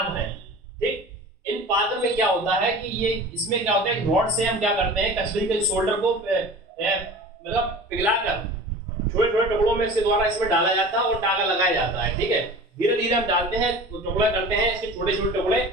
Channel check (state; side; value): normal; both; correlation 0.38